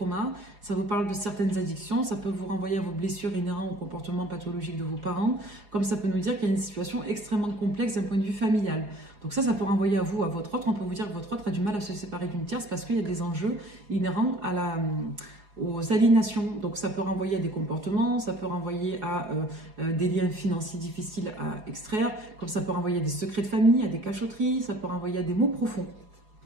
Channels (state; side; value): late; left; 4.8 ms